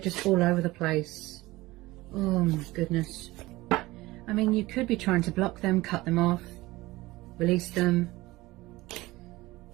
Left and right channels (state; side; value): quieter; left; 19.4 dB